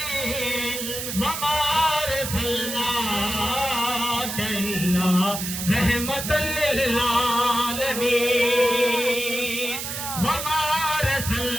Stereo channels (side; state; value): right; noise; hiss, 5 dB below the sound